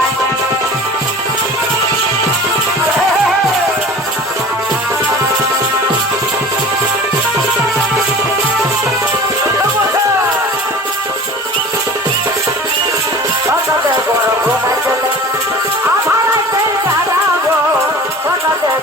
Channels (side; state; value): both; normal; correlation 0.39